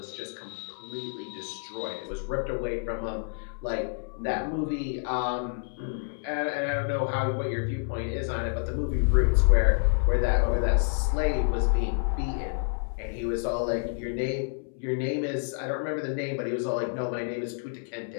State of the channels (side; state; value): right; silent; 59 dB below the other